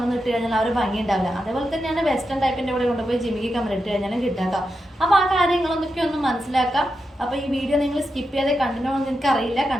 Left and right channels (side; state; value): both; normal; correlation 0.87